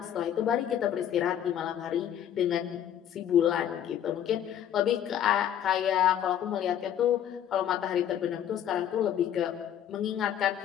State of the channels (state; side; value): quieter; right; 10.2 dB